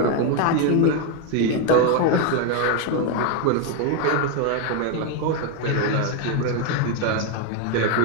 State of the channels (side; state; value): both; different; correlation 0.01